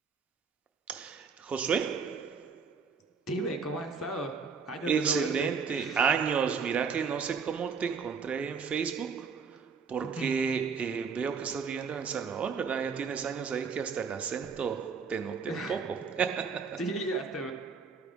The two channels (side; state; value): left; quieter; 5.6 dB